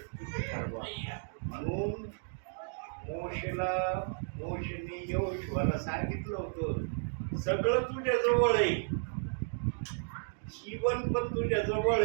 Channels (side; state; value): left; silent; digital silence